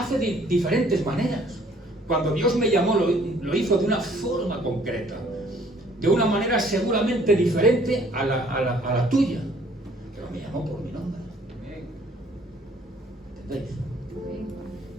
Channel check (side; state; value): both; normal; correlation 0.59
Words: de diferentes maneras. Cuando Dios me llamó, lo hizo de una forma concreta. De una manera seguramente diferente a la tuya. Pero me llamó por mi nombre. ¿Entendéis?